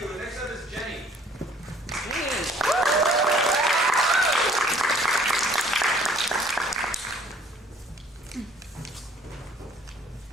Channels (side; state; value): both; normal; correlation 0.57